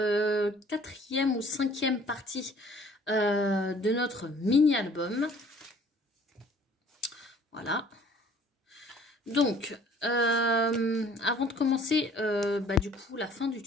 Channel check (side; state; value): both; normal; correlation 0.54